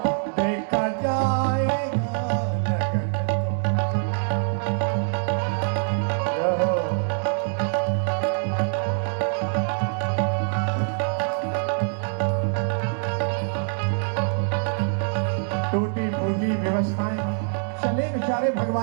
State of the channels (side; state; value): left; silent; digital silence